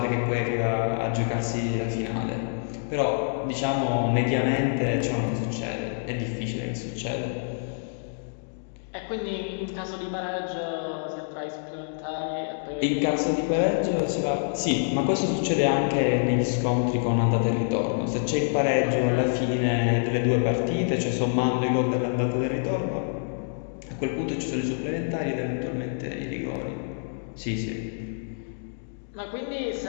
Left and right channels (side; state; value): right; silent; digital silence